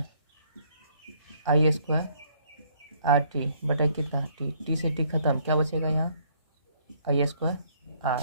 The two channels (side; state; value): both; inverted; correlation -0.65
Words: आई स्क्वायर आर टी बटा कितना टी, टी से टी खत्म, क्या बचेगा यहाँ, आई स्क्वायर